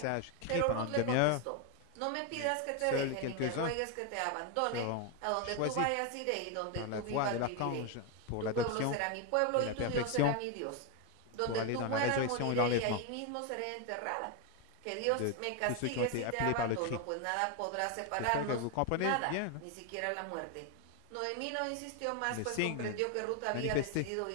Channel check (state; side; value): different; both; correlation 0.01